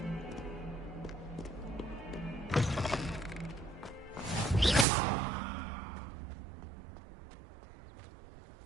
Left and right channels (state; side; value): drops out; left; at 4.9 s